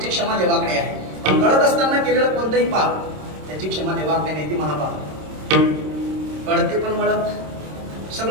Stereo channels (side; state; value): left; late; 26 ms